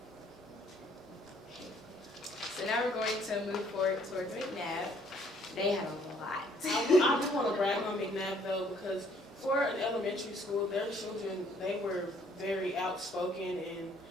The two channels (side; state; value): both; normal; correlation 0.63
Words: So now we're going to move forward towards McNabb. They had a lot. I just want to brag on McNabb though, because for an elementary school, their children, they were very outspoken and